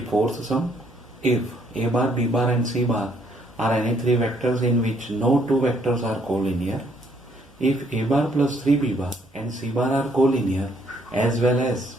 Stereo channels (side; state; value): both; normal; correlation 0.68